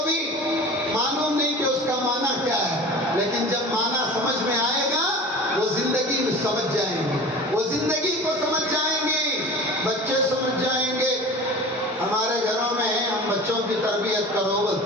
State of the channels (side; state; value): both; normal; correlation 0.38